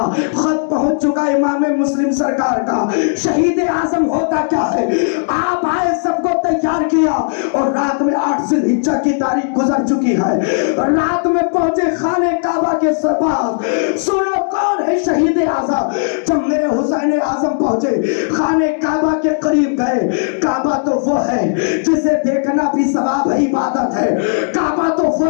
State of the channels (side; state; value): right; silent; digital silence